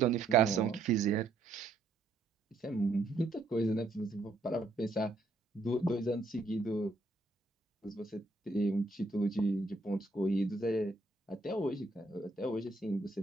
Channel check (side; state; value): left; quieter; 3.1 dB